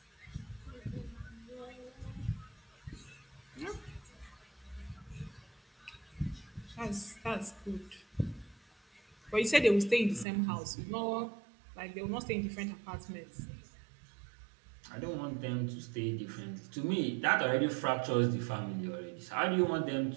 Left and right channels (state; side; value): drops out; left; at 10.2 s